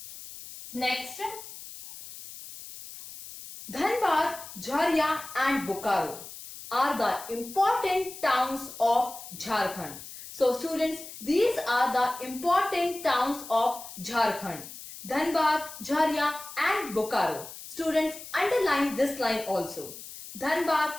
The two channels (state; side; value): noise; left; hiss, 13 dB below the sound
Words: Next, Dhanbad, Jharia and Bokaro are the important towns of Jharkhand. So students, these are the important towns of Jharkhand. Dhanbad, Jharia and Bokaro. Students, underline this line also. Dhanbad,